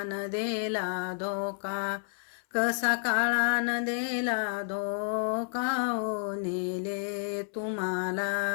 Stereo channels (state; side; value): silent; right; 58 dB below the other